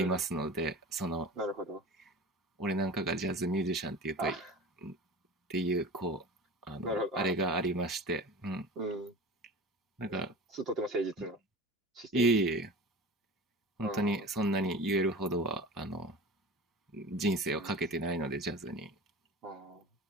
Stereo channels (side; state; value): both; normal; correlation 0.34